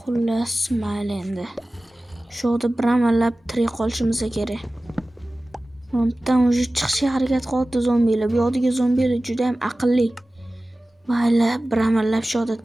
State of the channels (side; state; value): both; normal; correlation 0.97